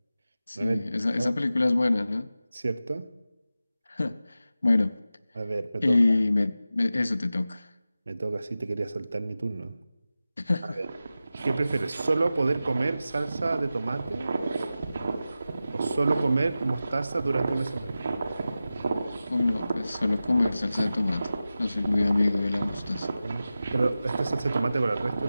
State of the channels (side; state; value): both; inverted; correlation -0.94